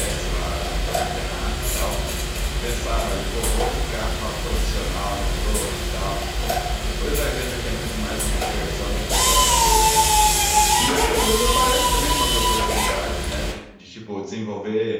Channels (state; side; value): identical; both; correlation 1.00